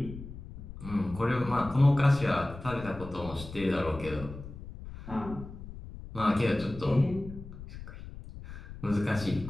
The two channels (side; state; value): left; noise; rumble, 13 dB below the sound